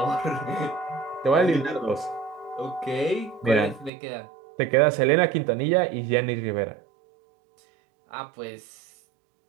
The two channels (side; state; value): left; drops out; at 3.9 s